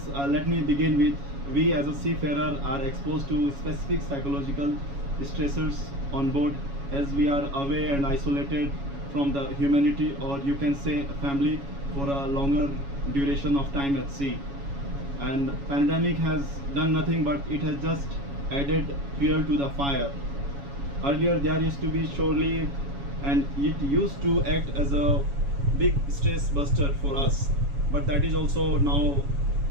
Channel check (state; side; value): late; left; 7.2 ms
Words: let me begin with, we as a seafarer are exposed to specific psychological stressors on board, as we are away and isolated from the humanity, or you can say family, for a longer duration of time at sea. And pandemic has done nothing but it has just added fuel to the fire. Earlier there used to be shore leave, and it used to act as a big stress buster for us, but that is also now